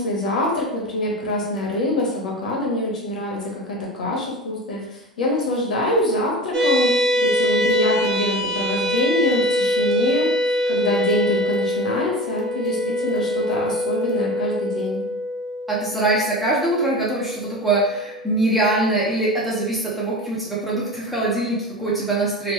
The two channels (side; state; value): both; normal; correlation 0.31